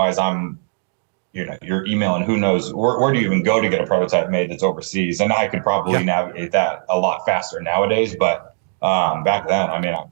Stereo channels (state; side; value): silent; left; 62 dB below the other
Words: you're emailing, who knows, where do you even go to get a prototype made that's overseas? And I could probably navigate that a lot faster nowadays. But back then, I mean,